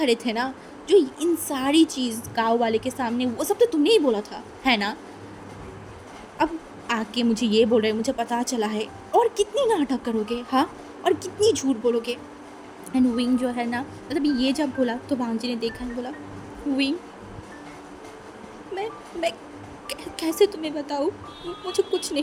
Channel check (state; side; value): identical; both; correlation 1.00